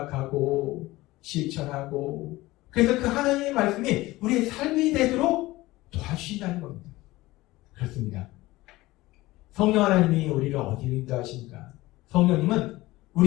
실천하고, 그래서 그 하나님의 말씀이 우리의 삶이 되도록 도와주신다는 겁니다. 그렇습니다. 성령 하나님이 우리를 어디로 인도하십니까? 성령님은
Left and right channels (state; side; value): quieter; right; 18.9 dB